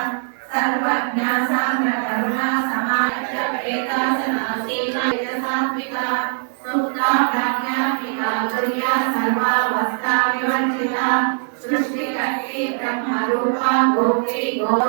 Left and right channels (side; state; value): left; silent; digital silence